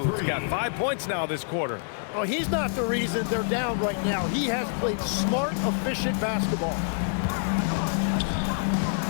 got 5 points now this quarter. Oh, he's not the reason they're down right now. He has played smart, efficient basketball.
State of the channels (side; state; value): right; silent; digital silence